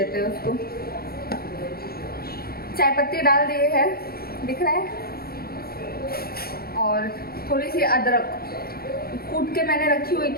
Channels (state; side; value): late; right; 0.44 ms